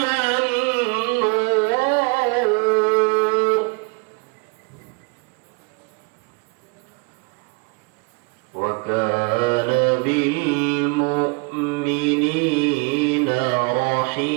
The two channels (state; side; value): quieter; left; 31.8 dB